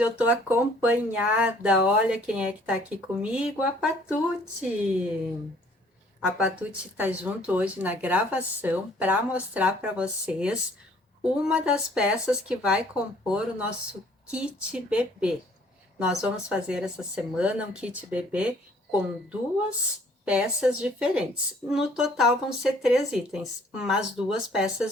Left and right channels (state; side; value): normal; both; correlation 0.59